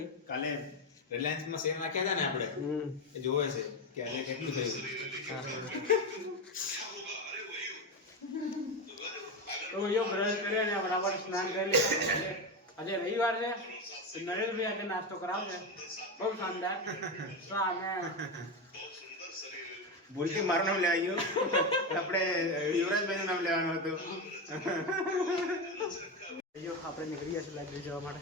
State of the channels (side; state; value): both; normal; correlation 0.14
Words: કાલે રિલાયન્સમાં શેર નાખ્યા હતા ને આપણે, એ જોવે છે કે આજે કેટલું થયું. તો ભાઈઓ બ્રશ કર્યા ને બરાબર સ્નાન કરી લીધા. આજે રવિવાર છે તો નરેશભાઈ આજે નાસ્તો કરાવશે બહુ શાનદાર. તો અમે ભૂલથી મારું નામ લેવાઈ ગયું. આપણે યુવરાજભાઈનું નામ લેવાનું હતું. ભાઈઓ આપણે નીકળી ગયા છે લાઇબ્રેરી જવા માટે.